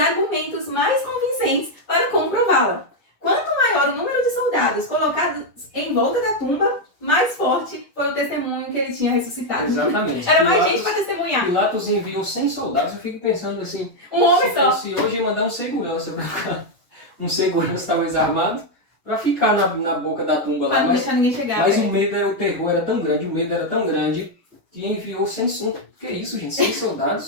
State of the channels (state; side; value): late; right; 1.6 ms